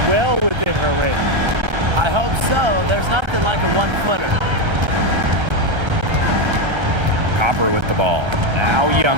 well within her range. I hope so. There's nothing like a one-footer. Copper with the ball. Now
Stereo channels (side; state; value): left; late; 1.3 ms